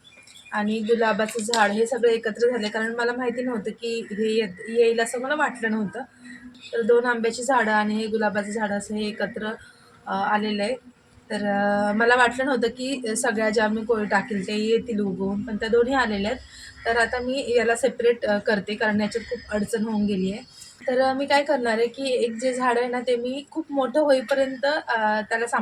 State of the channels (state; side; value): identical; both; correlation 1.00